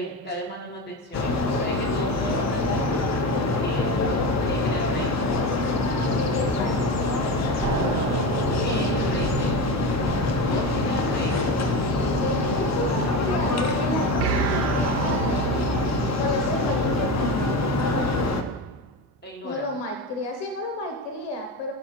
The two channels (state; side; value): normal; both; correlation 0.21